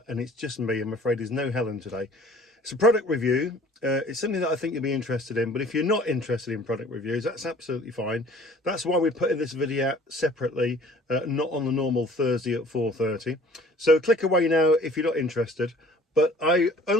and it's just me. I'm afraid there's no Helen today. It's a product review. It's something that I think you'll be interested in, but if you're not interested in product reviews, that's absolutely fine. That's why we're putting this video out separately, not on the normal Thursday at 4:30. So click away now if you're not interested. But I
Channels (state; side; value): normal; both; correlation 0.51